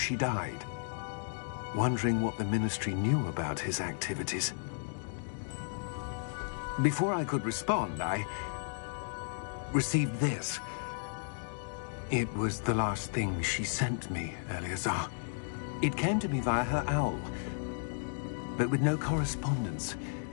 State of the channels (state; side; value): silent; right; digital silence